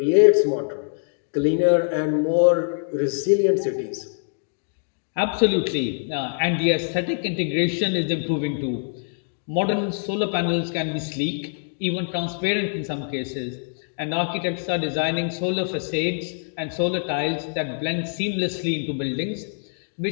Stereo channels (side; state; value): right; silent; digital silence